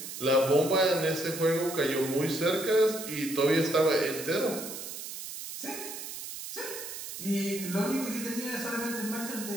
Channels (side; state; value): right; noise; hiss, 9 dB below the sound